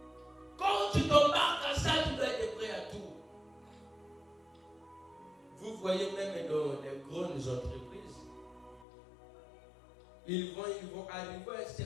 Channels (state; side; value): drops out; right; at 8.8 s